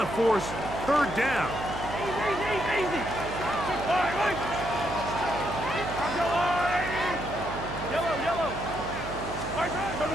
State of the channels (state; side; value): noise; right; hum, 9 dB below the sound